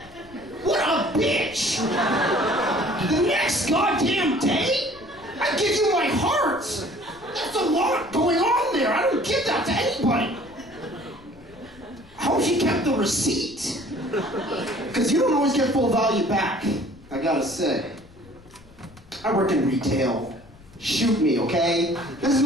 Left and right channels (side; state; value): left; noise; rumble, 24 dB below the sound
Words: What a bitch! The next goddamn day? I give you my heart! That's a lot going on there. I don't give that to anybody. I hope she kept the receipt. Because you don't always get full value back, I gotta say. I work in retail. Shoot me, okay? This is